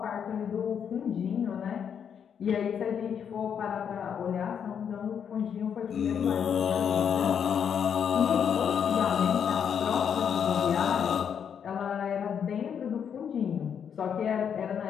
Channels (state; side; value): quieter; right; 7.8 dB